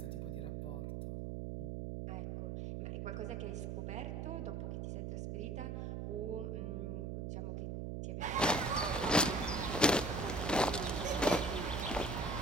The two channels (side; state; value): right; noise; hum, 3 dB below the sound